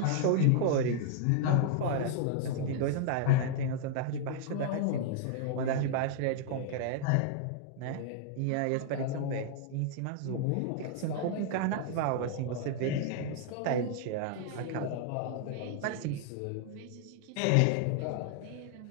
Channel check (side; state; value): both; different; correlation -0.01